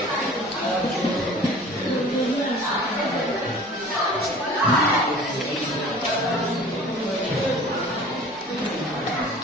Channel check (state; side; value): normal; both; correlation 0.45